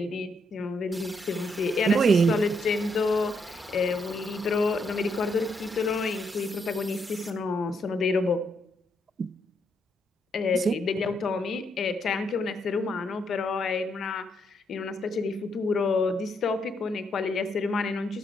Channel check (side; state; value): both; normal; correlation 0.76